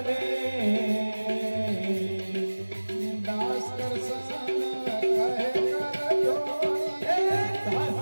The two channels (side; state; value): both; inverted; correlation -1.00